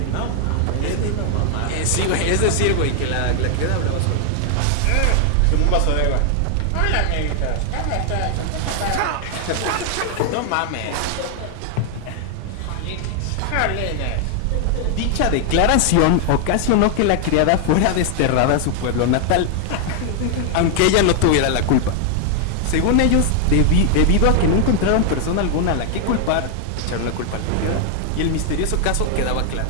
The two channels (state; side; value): different; both; correlation 0.00